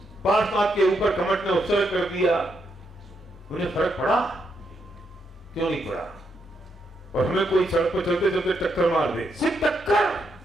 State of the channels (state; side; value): normal; both; correlation 0.79